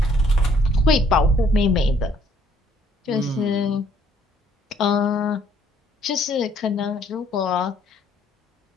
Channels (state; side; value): normal; both; correlation 0.63